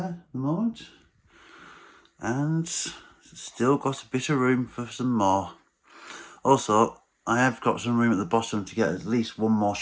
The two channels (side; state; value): both; identical; correlation 1.00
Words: at the moment. And still got a bit of room for some more. Also, I have got some room at the bottom to get at least one more